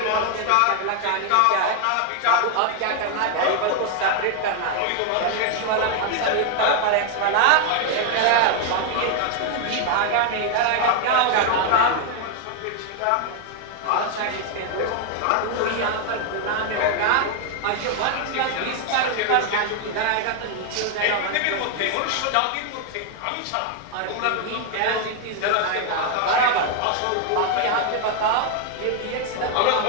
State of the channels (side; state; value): both; different; correlation 0.00